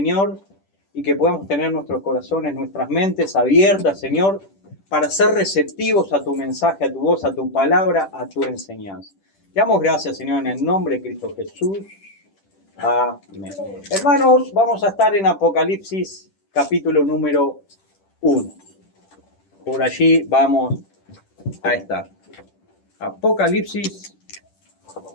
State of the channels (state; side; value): late; right; 10 ms